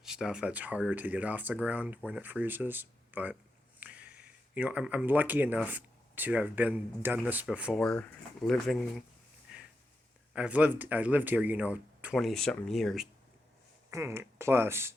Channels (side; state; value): both; normal; correlation 0.87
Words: stuff, that's harder to get off the ground when it freezes. But you know, I'm lucky enough to have done this before. I lived here, you know, 20 something years plus,